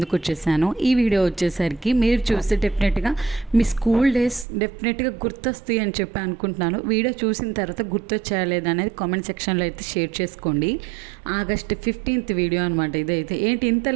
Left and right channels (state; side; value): drops out; left; at 4.5 s